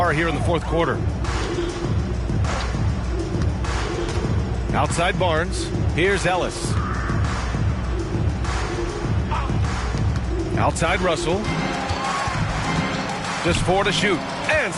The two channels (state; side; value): identical; both; correlation 1.00